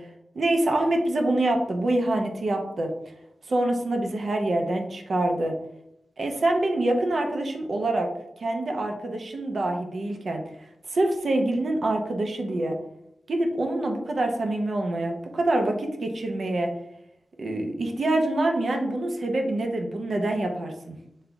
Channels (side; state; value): both; normal; correlation 0.93